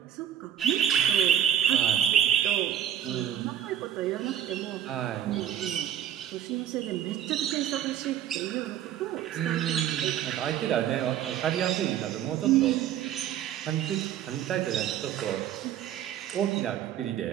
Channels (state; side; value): quieter; left; 10.2 dB